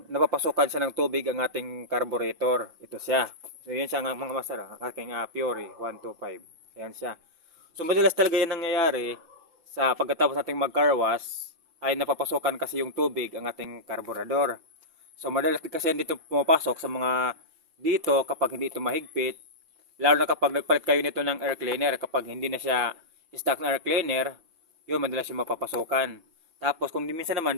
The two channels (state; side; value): late; left; 5.9 ms